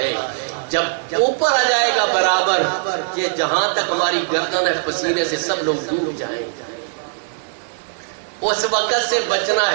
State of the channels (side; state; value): left; silent; digital silence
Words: جب اوپر آ جائے گا برابر کہ جہاں تک ہماری گردن ہے پسینے سے سب لوگ ڈوب جائیں گے. اس وقت سے بچنا